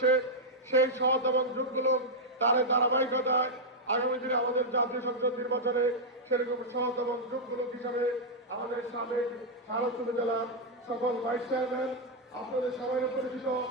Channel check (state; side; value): normal; both; correlation -0.03